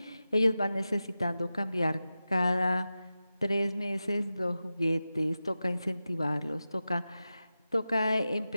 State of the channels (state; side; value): inverted; both; correlation -0.93